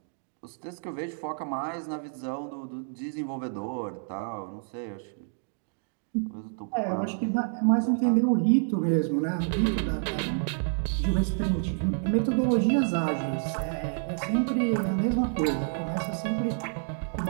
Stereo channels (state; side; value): silent; left; digital silence